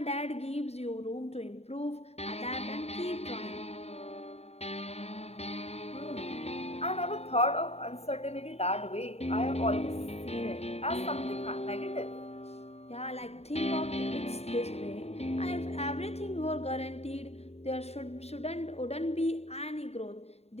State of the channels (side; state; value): right; late; 0.30 ms